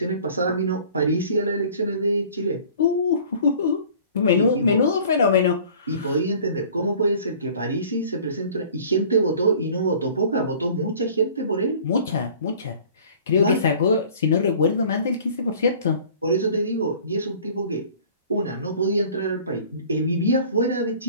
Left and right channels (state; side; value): inverted; both; correlation -0.49